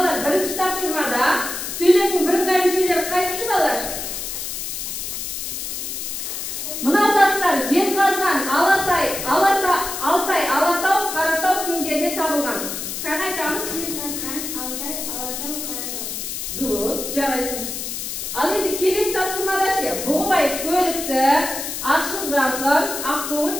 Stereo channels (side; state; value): left; noise; hiss, 5 dB below the sound